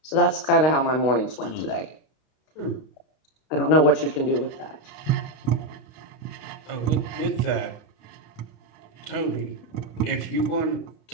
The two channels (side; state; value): right; late; 32 ms